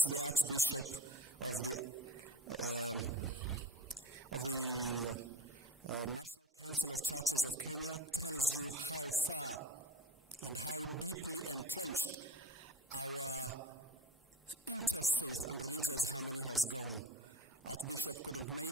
the Archbishop of the National Council of Churches of Kenya, tells you how far and how deeply entrenched our interfaith and religious harmony has gone. Archbishop couldn't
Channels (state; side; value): normal; both; correlation 0.33